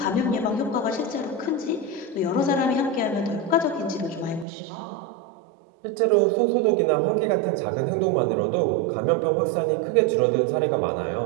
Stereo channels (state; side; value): drops out; left; at 4.5 s